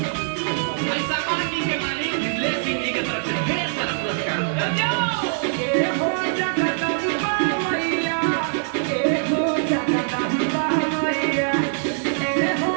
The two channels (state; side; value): silent; left; digital silence